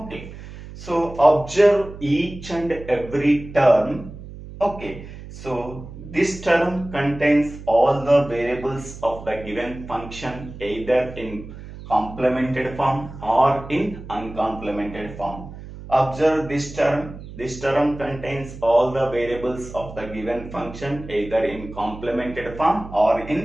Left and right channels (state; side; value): noise; right; hum, 14 dB below the sound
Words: So observe each and every term. Okay. So this term contains all the variables of the given function either in complemented form or in uncomplemented form. Observe this term. This term contains all the variables of the given function either in complemented form or